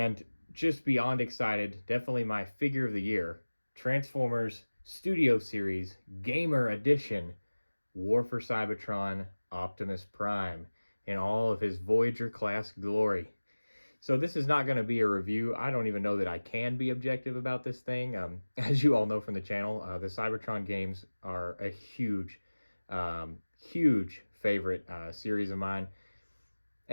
just beyond excited, definitely my figure of the year, Transformers Studio Series Gamer Edition War for Cybertron Optimus Prime in all of his Voyager class glory. So this is not going to be a review. I don't even know that I can be objective about this thing. As you all know from the channel, the Cybertron games are a huge favorite series of mine.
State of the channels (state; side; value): inverted; both; correlation -1.00